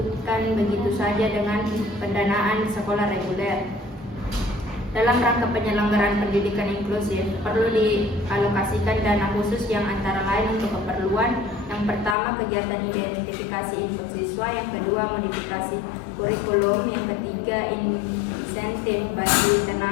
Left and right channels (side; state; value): right; drops out; at 12.2 s